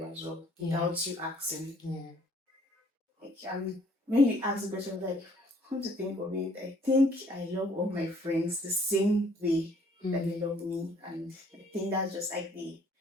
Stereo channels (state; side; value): normal; both; correlation 0.60